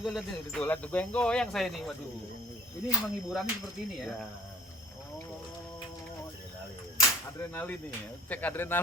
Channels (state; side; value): normal; both; correlation 0.50